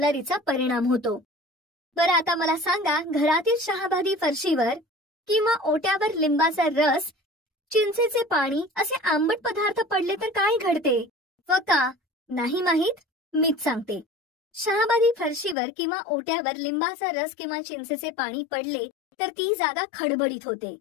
परिणाम होतो. बरं, आता मला सांगा, घरातील शहाबादी फरशीवर किंवा ओट्यावर लिंबाचा रस, चिंचेचे पाणी असे आंबट पदार्थ पडले तर काय घडते व का? नाही माहीत? मीच सांगते. शहाबादी फरशीवर किंवा ओट्यावर लिंबाचा रस किंवा चिंचेचे पाणी पडले तर ती जागा खडबडीत होते.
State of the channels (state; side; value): drops out; right; at 15.6 s